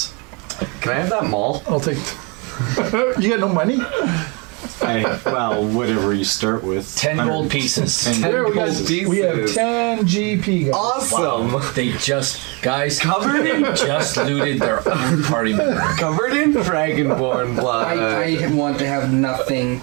Can I have that maul? I'll take. You got no money? Whatever you start with. 10 gold pieces. 10 There we gold go. pieces. We have 10 GP, guys. Awesome! Wow. They just Covered in just looted their own party member. Covered in dragonborn blood. I want to have nothing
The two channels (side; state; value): left; quieter; 30.9 dB